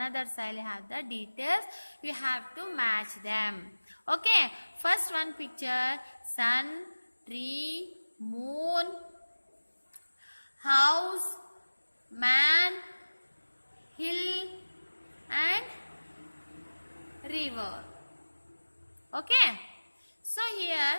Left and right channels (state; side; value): inverted; both; correlation -1.00